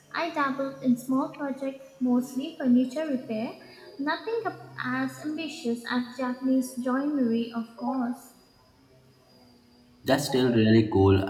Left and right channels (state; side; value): identical; both; correlation 1.00